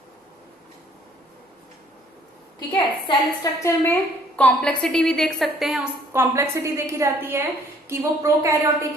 ठीक है। सेल स्ट्रक्चर में कॉम्प्लेक्सिटी भी देख सकते हैं, उस कॉम्प्लेक्सिटी देखी जाती है कि वो प्रोकैरियोटिक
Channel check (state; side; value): normal; both; correlation 0.60